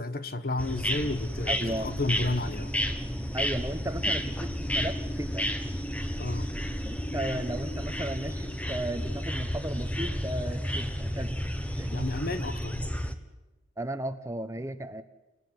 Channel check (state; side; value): normal; both; correlation 0.70